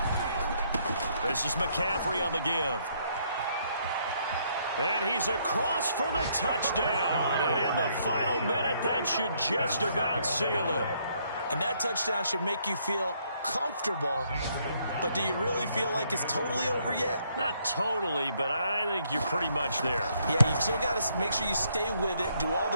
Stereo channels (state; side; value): inverted; both; correlation -0.70